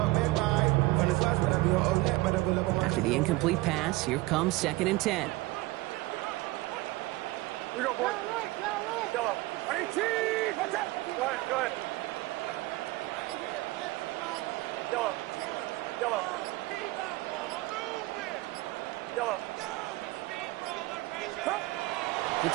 After the incomplete pass, here comes 2nd and 10. Here we go, boy. Yellow. 18. Watch out. Go ahead. Yellow. To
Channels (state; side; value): quieter; left; 20.2 dB